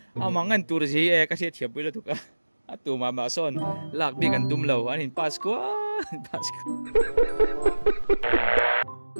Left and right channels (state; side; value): inverted; both; correlation -1.00